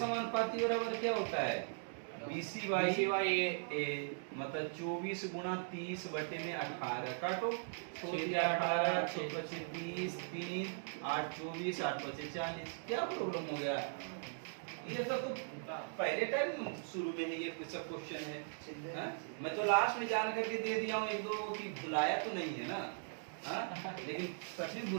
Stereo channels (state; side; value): silent; left; digital silence